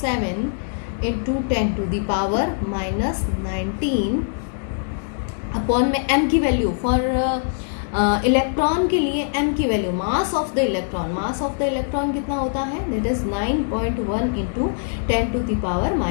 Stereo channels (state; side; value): silent; right; digital silence